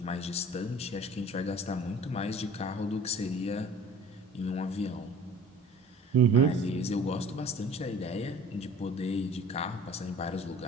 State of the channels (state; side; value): normal; both; correlation 0.47